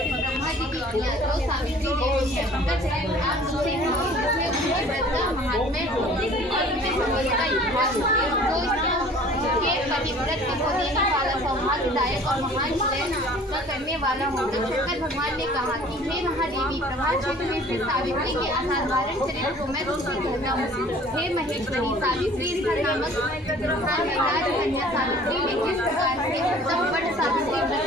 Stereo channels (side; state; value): both; normal; correlation 0.50